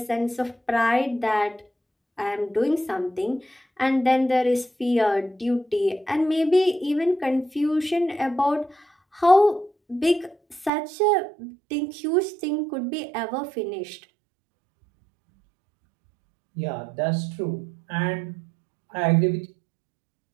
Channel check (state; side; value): drops out; left; at 10.7 s